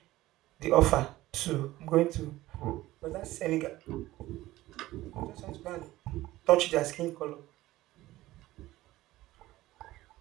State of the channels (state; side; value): quieter; left; 16.7 dB